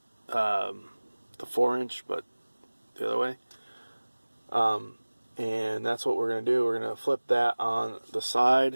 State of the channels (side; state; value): both; inverted; correlation -1.00